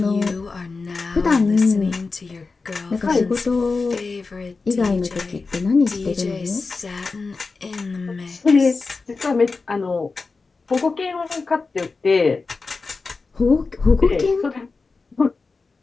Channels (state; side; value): quieter; right; 4.2 dB